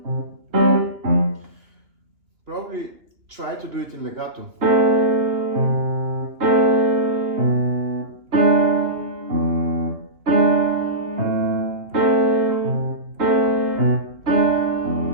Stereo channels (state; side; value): late; left; 2.8 ms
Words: Probably try to do it in legato.